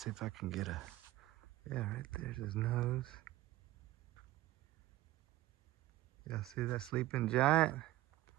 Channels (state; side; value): quieter; left; 16.2 dB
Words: if I can get a... Yeah, right there's his nose. Y'all see that sleeping giant?